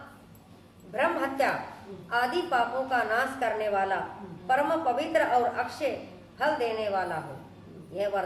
ब्रह्म हत्या आदि पापों का नाश करने वाला, परम पवित्र और अक्षय फल देने वाला हो। यह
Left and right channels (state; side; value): identical; both; correlation 1.00